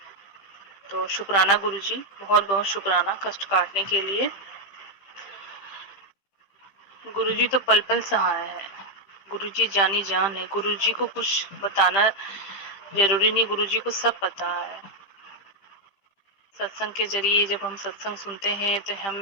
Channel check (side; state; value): right; late; 15 ms